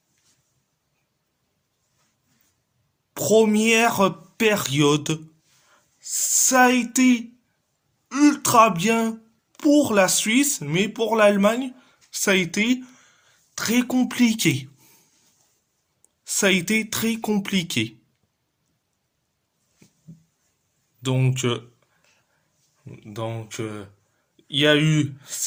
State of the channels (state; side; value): identical; both; correlation 1.00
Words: Première période, ça a été ultra bien pour la Suisse, mais pour l'Allemagne, ça a été très compliqué. Ça a été très compliqué. Donc, il y a eu